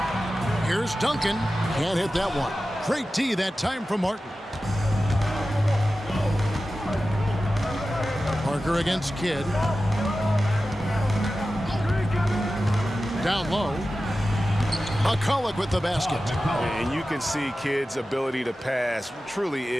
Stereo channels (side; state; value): both; normal; correlation 0.94